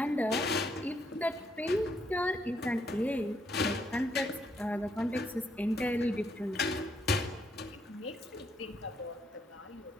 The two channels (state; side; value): normal; both; correlation 0.74